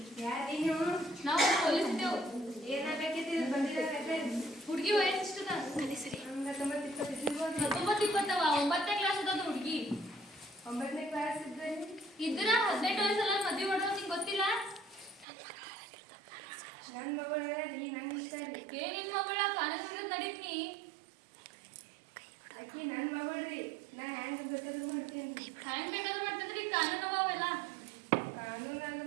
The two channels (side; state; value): left; drops out; at 15.2 s